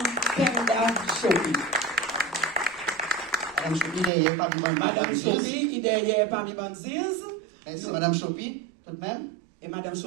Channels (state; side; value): drops out; left; at 4.1 s